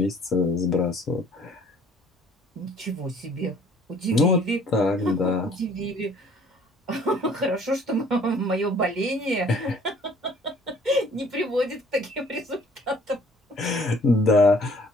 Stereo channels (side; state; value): both; normal; correlation 0.56